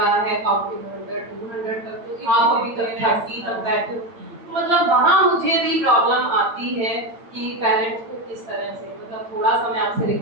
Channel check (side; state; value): left; late; 8.7 ms